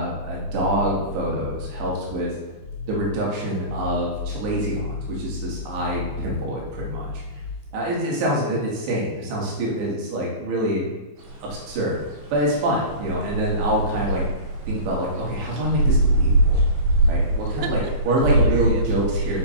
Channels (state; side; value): late; left; 15 ms